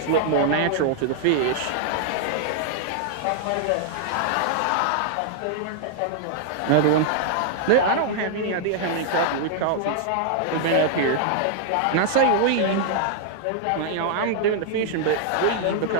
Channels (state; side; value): different; both; correlation -0.01